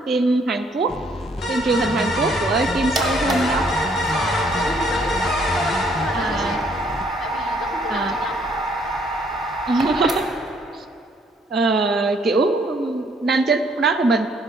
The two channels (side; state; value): both; normal; correlation 0.66